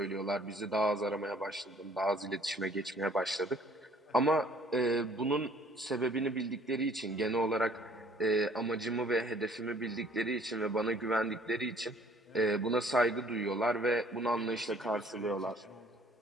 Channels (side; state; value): both; normal; correlation 0.57